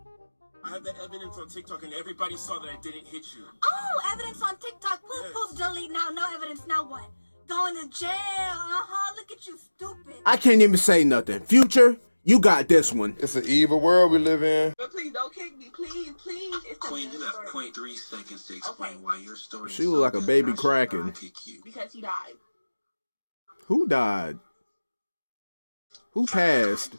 I have the evidence on TikTok, and everybody saw that I didn't hit you. Oh, evidence on TikTok. Poof, delete now. No evidence. Now what? Going to jail. Look at you, stupid. I can't even say nothing. Future, you got this one. It's an evil world we live in. But please don't kick me, please. It's Queen, you have 0.3 seconds to explain why your story She look like a baby cracking. Because he died. Who died? Who passed?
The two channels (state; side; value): inverted; both; correlation -1.00